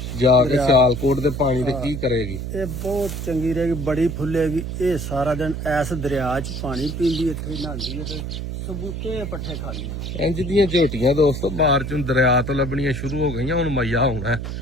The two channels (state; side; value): noise; right; hum, 5 dB below the sound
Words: ਜਾ ਕੇ ਸਿਆਲਕੋਟ ਦੇ ਪਾਣੀ ਤੇ ਕੀ ਕਰੇਗੀ ਇਹ ਬਹੁਤ ਚੰਗੀ ਰਹੇਗੀ ਬੜੀ ਫੁੱਲੇਗੀ ਇਹ ਸਾਰਾ ਦਿਨ ਐਸ ਦਰਿਆ 'ਚ ਪਾਣੀ ਪੀਂਦੀ ਇੱਥੇ ਨਹਾਉਂਦੀ ਹੈ ਤੇ ਸਬੂਤੇ ਪੱਠੇ ਖਾਂਦੀ ਇੰਜ ਦੀਆਂ ਝੋਟੀਆਂ ਦੋਸਤੋ ਬਾਹਰ ਚੋਂ ਦਰਿਆ ਤੋਂ ਲੱਭਣੀਆਂ ਸ਼ੁਰੂ ਹੋ ਗਈਆਂ ਹੁਣ ਮਈਆ ਹੋਣਾ